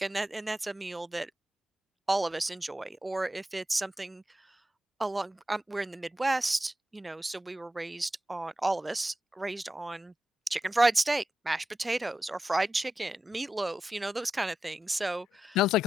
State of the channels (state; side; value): normal; both; correlation 0.89